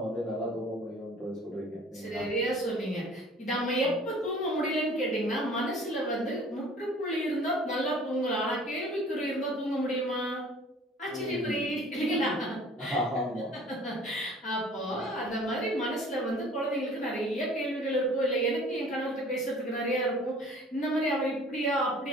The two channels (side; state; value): both; normal; correlation 0.49